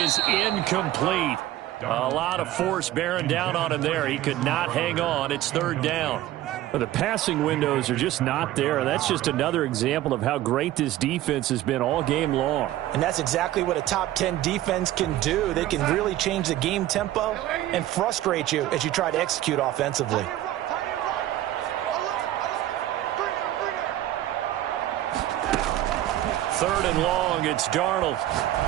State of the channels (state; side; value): quieter; left; 14.1 dB